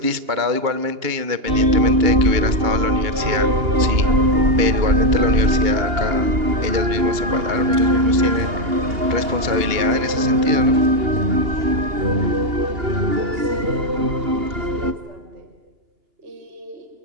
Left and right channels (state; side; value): late; left; 2.8 ms